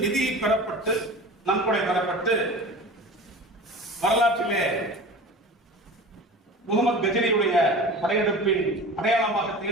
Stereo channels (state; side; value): normal; both; correlation 0.36